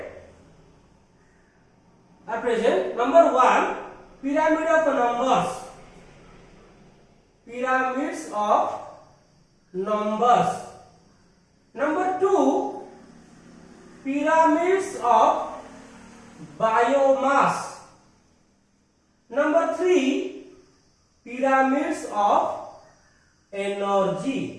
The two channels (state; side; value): identical; both; correlation 1.00